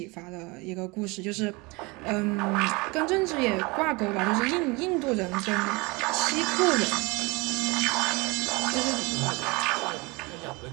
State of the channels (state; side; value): quieter; left; 25.9 dB